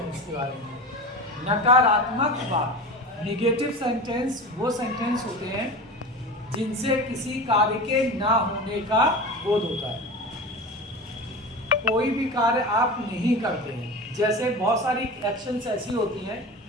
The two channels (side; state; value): both; normal; correlation 0.30